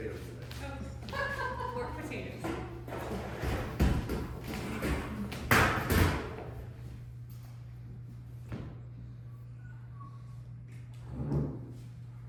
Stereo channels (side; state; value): both; identical; correlation 1.00